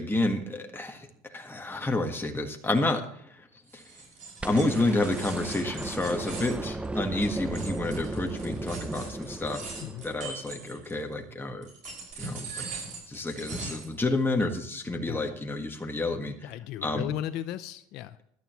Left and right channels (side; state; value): both; normal; correlation 0.73